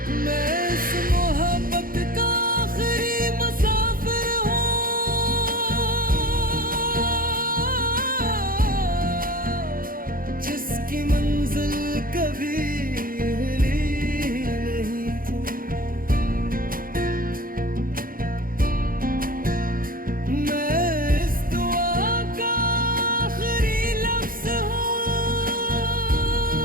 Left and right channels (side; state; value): left; late; 0.41 ms